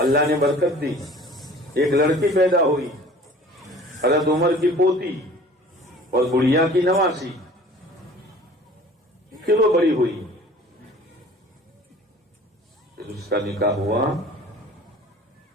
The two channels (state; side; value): normal; both; correlation 0.47